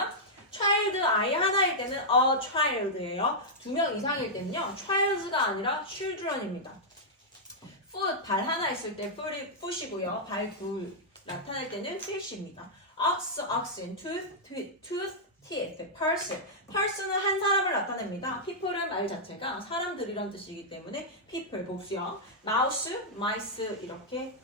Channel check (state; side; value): normal; both; correlation -0.08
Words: child 아이 하나일 때는 a child예요. 두 명 이상일 때는요. childs가 아니라 children입니다. foot 발 하나 있을 때 foot이고요. 발 둘 나타낼 때는 fish입니다. ox, oxen, tooth, tooth, teeth, person. person은 한 사람을 나타냅니다. people은 말 자체가 사람들이란 뜻이기 때문에 people 복수형. mouse, mice 이렇게